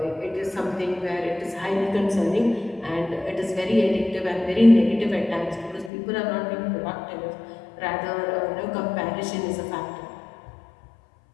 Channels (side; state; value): right; drops out; at 5.9 s